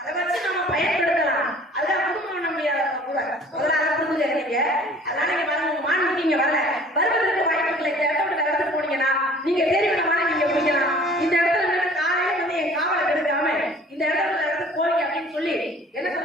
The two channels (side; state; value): both; normal; correlation 0.50